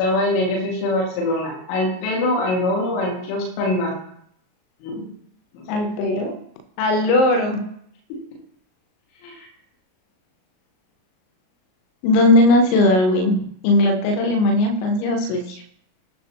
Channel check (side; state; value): right; late; 38 ms